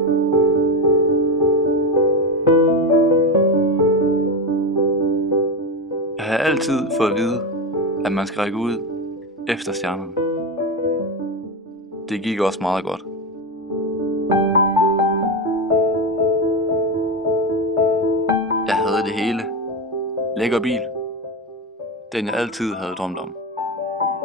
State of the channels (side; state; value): both; normal; correlation 0.15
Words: har altid fået at vide, at man skal række ud efter stjernerne. Det gik også meget godt. Jeg havde det hele. Lækker bil. Den jeg altid havde drømt om.